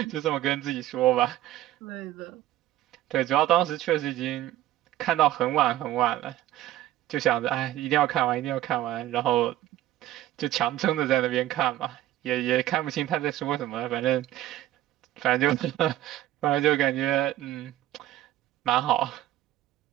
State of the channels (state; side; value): quieter; left; 14.1 dB